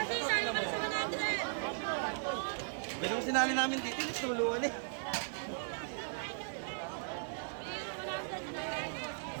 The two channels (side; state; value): left; silent; digital silence